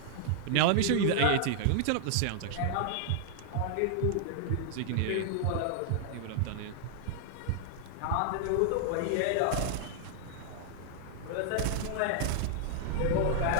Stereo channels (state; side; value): different; both; correlation -0.01